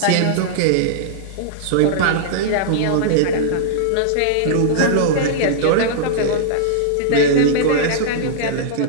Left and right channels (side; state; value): both; different; correlation -0.02